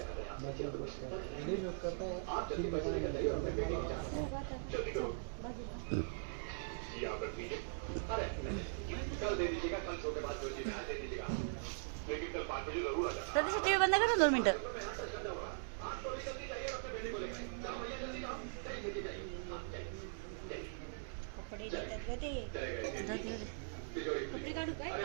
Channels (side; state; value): left; silent; digital silence